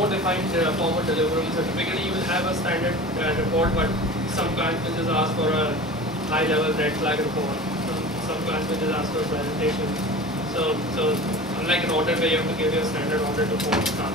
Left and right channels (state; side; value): normal; both; correlation 0.36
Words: defined form of delivery. So typically you will have a standard report, but some clients will just ask for a high-level red flag report. Some clients will just ask for a presentation. So unlike an audit where you have to give your standard audit report,